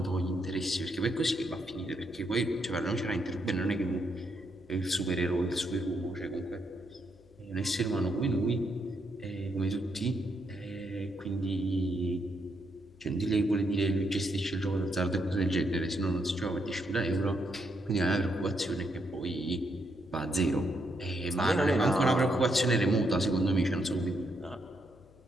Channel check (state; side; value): noise; left; hum, 27 dB below the sound